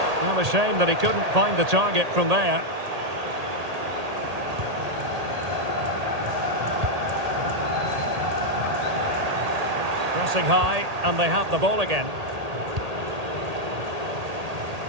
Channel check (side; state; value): left; late; 1.8 ms